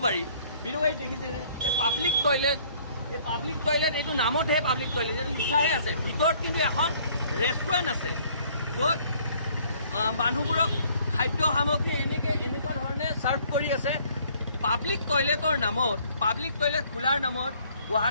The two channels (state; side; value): inverted; both; correlation -0.60